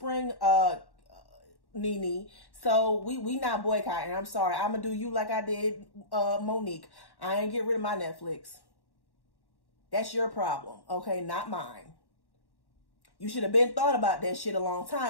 Nene. So we not boycotting. I'm sorry. I'm gonna do you like I did Monique. I ain't get rid of my Netflix. That's your problem, okay? Not mine. You should have been thought about that shit a long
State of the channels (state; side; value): late; right; 1.1 ms